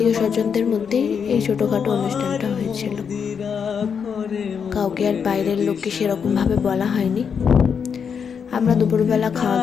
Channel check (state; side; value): quieter; right; 6.8 dB